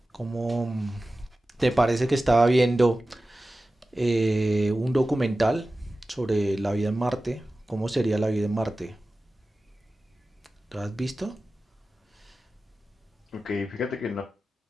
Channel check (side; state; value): both; normal; correlation 0.95